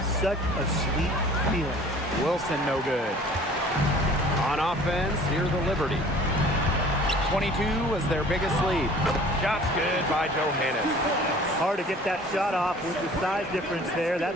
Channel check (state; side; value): normal; both; correlation 0.49